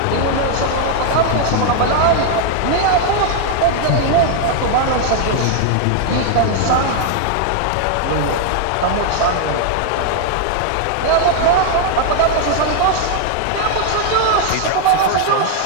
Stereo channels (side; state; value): both; different; correlation 0.00